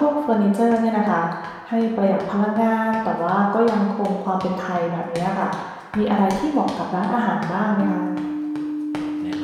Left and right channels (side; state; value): both; identical; correlation 1.00